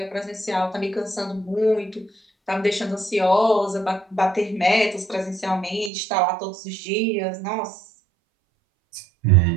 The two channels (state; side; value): drops out; left; at 5.9 s